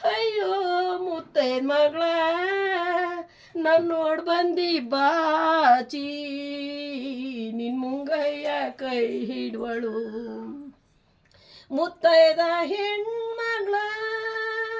ಅಯ್ಯೋ ಮುತ್ತೈದ ಮಗಳ ನಾನು ನೋಡಿ ಬಂದಿ ಬಾಚಿ ನಿನ್ನ ಮುಂಗಯ್ಯ ಕೈ ಹಿಡ್ವಳು ಮುತ್ತೈದ ಹೆಣ್ಮಗಳ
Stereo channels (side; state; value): both; identical; correlation 1.00